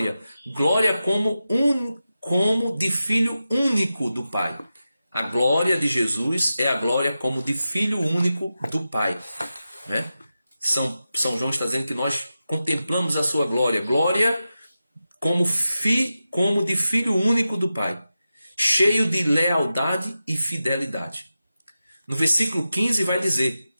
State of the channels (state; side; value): inverted; both; correlation -0.92